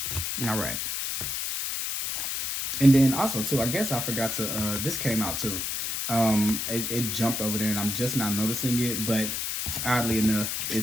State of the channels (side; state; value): left; noise; hiss, 2 dB below the sound